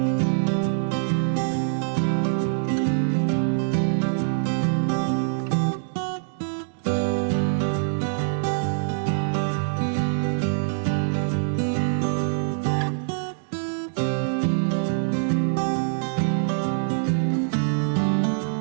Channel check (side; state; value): left; silent; digital silence